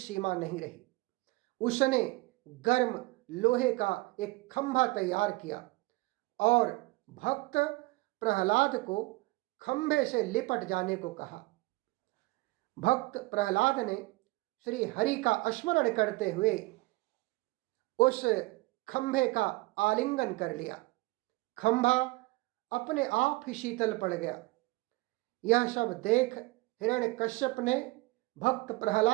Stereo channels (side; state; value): left; quieter; 22.5 dB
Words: नहीं रही। उसने गर्म लोहे का एक खंभा तैयार किया और भक्त प्रहलाद को खंभे से लिपट जाने को कहा। भक्त प्रहलाद ने श्री हरि का स्मरण करते हुए उस खंभे का आलिंगन कर लिया। खंभा अपने आप ही शीतल पड़ गया। यह सब देख हिरण्यकश्यप ने भक्त